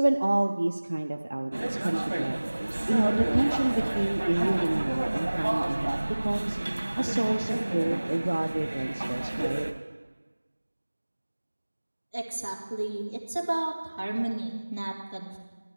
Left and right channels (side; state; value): both; inverted; correlation -1.00